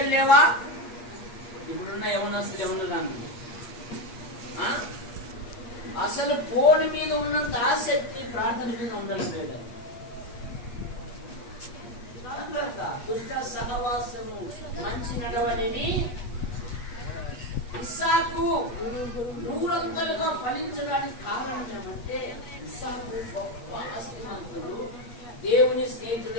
లేవా? ఇప్పుడున్న యవనస్తులు ఎవరు రాను అసలు ఫోన్ మీద ఉన్నంత ఆసక్తి ప్రార్థన మీద ఉండడం లేదు. దుష్ట సహవాసము మంచి నడవడిని ఇస్సాకు నూరంతలుగా ఫలించడానికి కారణం ఏమంటే ఇస్సాకు గొప్ప ఆస్తిమంతుడు, దేవుని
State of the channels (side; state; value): right; late; 8.4 ms